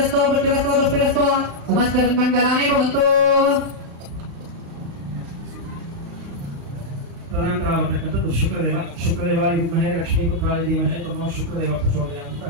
ವೃಷ್ಟಿರಸ್ತೋ ದುಷ್ಟಿರಸ್ತೋ ಸಮಸ್ತಮಂಗಲಾನಿ ಭವಂತು. ತದನಂತರವಾಗಿರ್ತಕ್ಕಂಥದ್ದು ಶುಕ್ರದೇವಾಯ ವಿದ್ಮಹೇ ಲಕ್ಷ್ಮೀಪುತ್ರಾಯ ಧೀಮಹಿ ತನ್ನೋ ಶುಕ್ರದೇವ ಪ್ರಚೋದಯಾತ್ ಅಂತ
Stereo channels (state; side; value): late; left; 35 ms